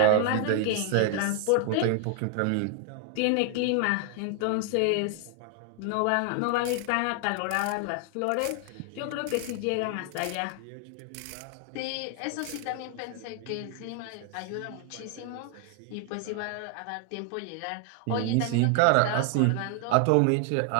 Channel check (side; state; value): both; different; correlation 0.00